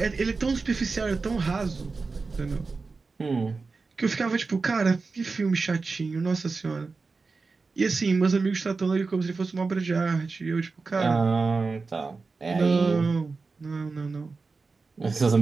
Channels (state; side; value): quieter; left; 4.2 dB